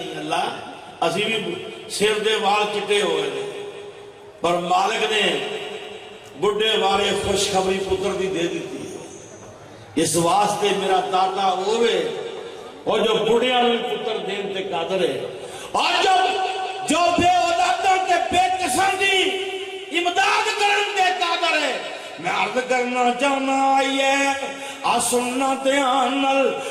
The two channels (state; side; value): identical; both; correlation 1.00